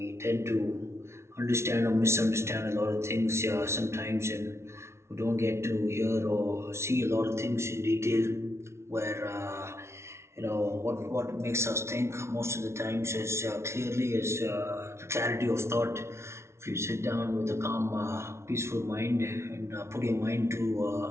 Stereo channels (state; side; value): late; left; 0.13 ms